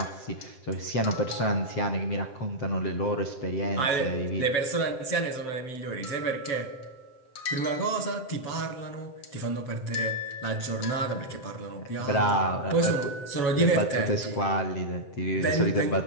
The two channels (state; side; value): late; right; 7.7 ms